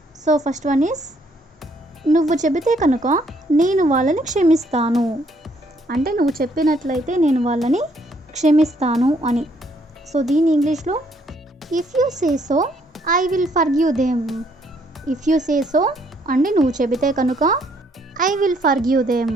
సో ఫస్ట్ వన్ ఈస్ నువ్వు చెబితే కనుక నేను వాళ్ళని క్షమిస్తాను అంటే నువ్వు చెప్పినట్లయితే నేను వాళ్ళని క్షమిస్తాను అని. సో దీని ఇంగ్లీష్లో if you say so I will forgive them. If you say so అంటే నువ్వు చెబితే కనుక I will forgive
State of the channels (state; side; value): normal; both; correlation 0.68